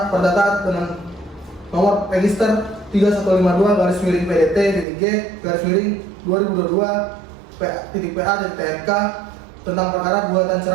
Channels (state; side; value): drops out; left; at 4.9 s